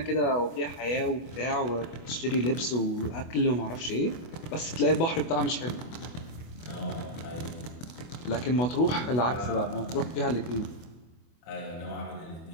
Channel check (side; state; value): right; late; 24 ms